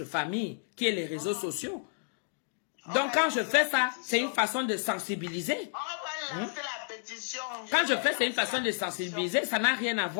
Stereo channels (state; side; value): silent; right; digital silence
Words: famille qui est les réseaux sociaux. Donc quand je fais ça, c'est une façon de sensibiliser. On va lancer la pétition. Quand je fais, c'est une façon de sensibiliser. Ça n'a rien à